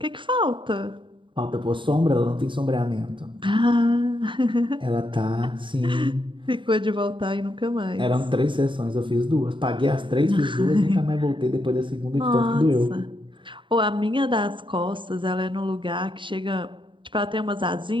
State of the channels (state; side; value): late; left; 0.24 ms